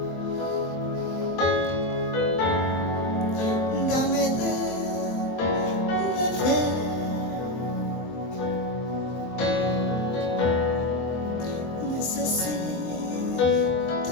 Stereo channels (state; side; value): late; right; 23 ms